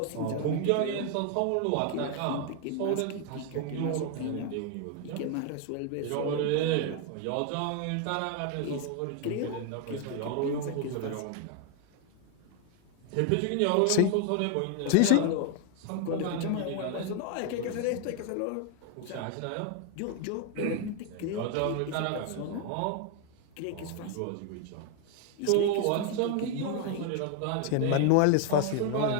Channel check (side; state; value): both; different; correlation 0.00